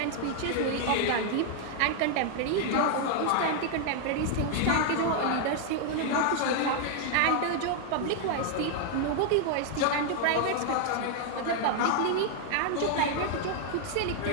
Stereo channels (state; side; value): different; both; correlation 0.00